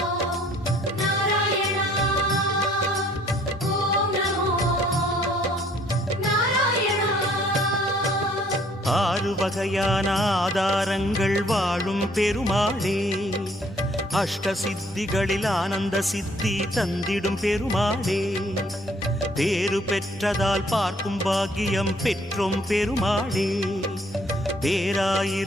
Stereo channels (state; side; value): normal; both; correlation 0.61